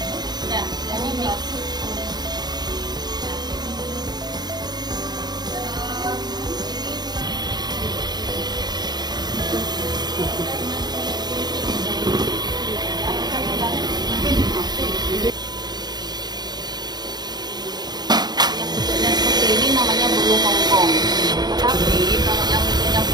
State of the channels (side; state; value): left; late; 0.20 ms